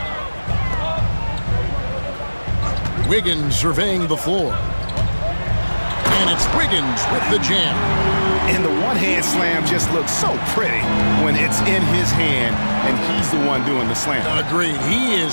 Wiggins surveying the floor. And it's Wiggins with the jam. And the one-hand slam just looks so pretty when it's in his hand and he's the one doing the slam. Agreed. He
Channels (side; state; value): both; inverted; correlation -1.00